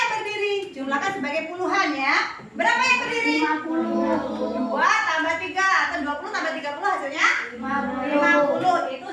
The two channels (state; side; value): identical; both; correlation 1.00